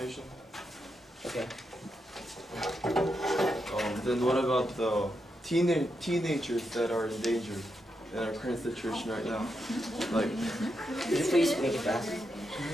Okay. Then what about the teenagers that are in danger in our current situation right now? Like, could you please make it fast?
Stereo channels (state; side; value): normal; both; correlation 0.84